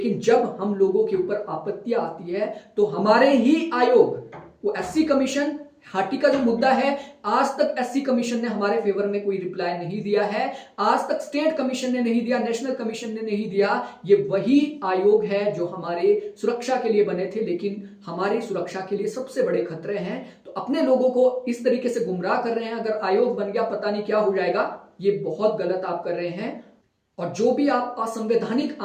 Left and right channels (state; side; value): identical; both; correlation 1.00